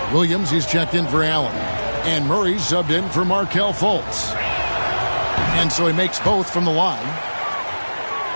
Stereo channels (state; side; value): inverted; both; correlation -1.00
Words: Williams, he's checked in for Allen. And Murray's subbed in for Markelle Fultz. And so he makes both from the line.